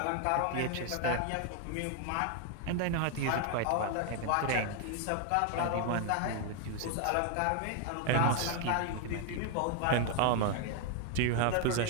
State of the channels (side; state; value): both; different; correlation 0.00